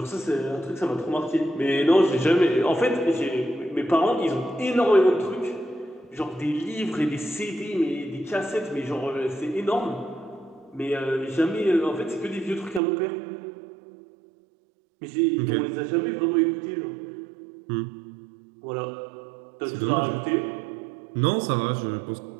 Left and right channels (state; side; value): drops out; left; at 12.8 s